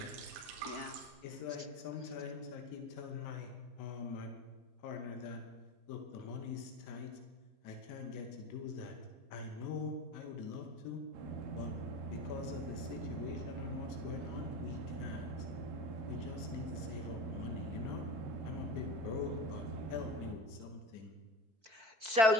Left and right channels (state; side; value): late; left; 4.5 ms